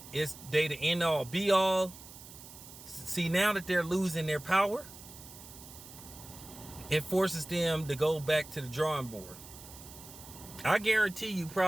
it's they the end all be all. See, now that they're losing their power, it forces them to go back to the drawing board. I guarantee you,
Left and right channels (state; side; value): noise; right; hiss, 17 dB below the sound